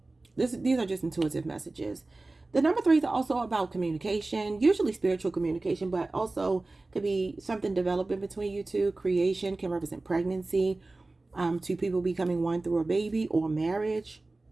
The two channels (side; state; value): left; quieter; 3.1 dB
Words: These are just intuitive messages. The number threes are also about communication, usually spiritual communication, but also could be something developing between you two. Creation can represent pregnancy, two people becoming one through a baby or marriage.